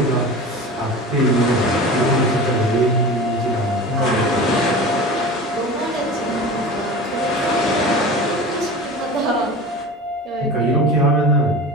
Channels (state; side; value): normal; both; correlation 0.34